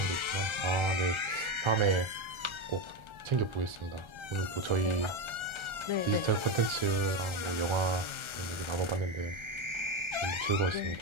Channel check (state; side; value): late; left; 1.3 ms